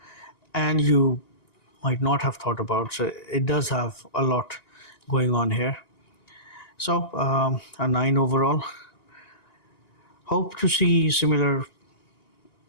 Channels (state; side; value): late; right; 1.9 ms